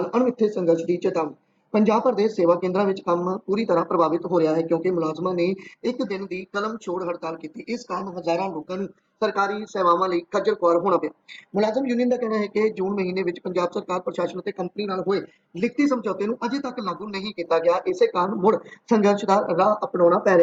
ਅਣਮਿੱਥੇ ਸੰਘਰਸ਼ ਦੀ ਚੇਤਾਵਨੀ। ਪੰਜਾਬ ਭਰ ਦੇ ਸੇਵਾ ਕੇਂਦਰਾਂ ਵਿੱਚ ਕੰਮ ਪੂਰੀ ਤਰ੍ਹਾਂ ਪ੍ਰਭਾਵਿਤ ਹੋ ਰਿਹਾ ਹੈ ਕਿਉਂਕਿ ਮੁਲਾਜ਼ਮਾਂ ਨੇ ਇੱਕ ਦਿਨ ਦੀ ਕਲਮ ਛੋੜ ਹੜਤਾਲ ਕੀਤੀ। ਇਸ ਕਾਰਨ ਹਜ਼ਾਰਾਂ ਲੋਕਾਂ ਨੂੰ ਸਰਕਾਰੀ ਸੇਵਾਵਾਂ ਲਈ ਖੱਜਲ ਖੁਆਰ ਹੋਣਾ ਪਿਆ। ਮੁਲਾਜ਼ਮ ਯੂਨੀਅਨ ਦਾ ਕਹਿਣਾ ਹੈ ਕਿ ਜੂਨ ਮਹੀਨੇ ਵਿੱਚ ਪੰਜਾਬ ਸਰਕਾਰ ਪ੍ਰਸ਼ਾਸਨ ਅਤੇ ਕੰਪਨੀ ਨਾਲ ਹੋਏ ਲਿਖਤੀ ਸਮਝੌਤੇ ਨੂੰ ਅਜੇ ਤੱਕ ਲਾਗੂ ਨਹੀਂ ਕੀਤਾ ਗਿਆ। ਇਸੇ ਕਾਰਨ ਮੁੜ ਸੰਘਰਸ਼ ਦਾ ਰਾਹ ਅਪਣਾਉਣਾ ਪੈ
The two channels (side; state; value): both; identical; correlation 1.00